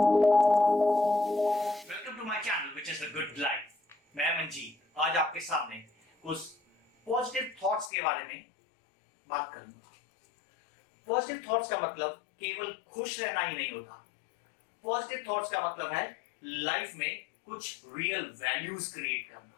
to my channel which is the good life. मैं मंजीत आज आपके सामने कुछ पॉजिटिव थॉट्स के बारे में बात करूंगा। पॉजिटिव थॉट्स का मतलब केवल खुश रहना ही नहीं होता। पॉजिटिव थॉट्स का मतलब है लाइफ में कुछ रियल वैल्यूज क्रिएट करना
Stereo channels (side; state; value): right; drops out; at 7.9 s